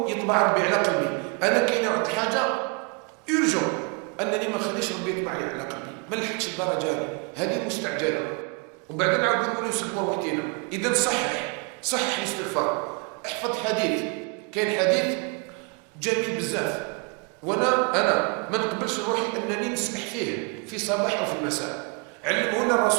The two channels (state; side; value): quieter; left; 34.0 dB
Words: يطبع ربي على قلبي. انا كاين واحد الحاجه يرجو انني ما نخليش ربي يطبع لي على قلبي، ما لحقتش الدرجه هذه مستعجله. وبعدين نعاود نقولوا نسبوا وحدينا. اذا صحح الاستغفار. احفظ حديث، كاين حديث جميل بزاف، وانا ما نقبلش روحي انني نسمح فيه في صباح او في المساء. علمه لنا